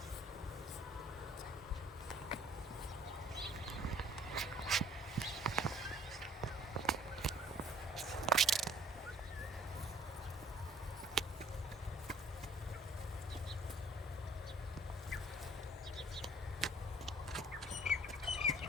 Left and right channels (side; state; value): both; normal; correlation 0.55